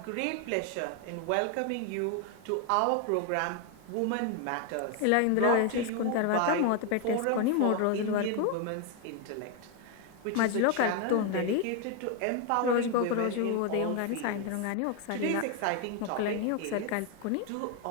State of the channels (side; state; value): both; different; correlation 0.01